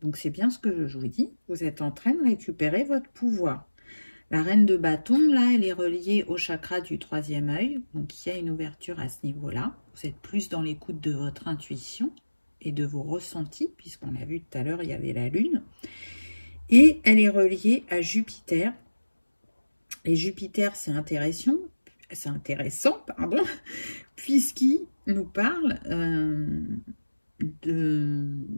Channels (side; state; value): both; inverted; correlation -1.00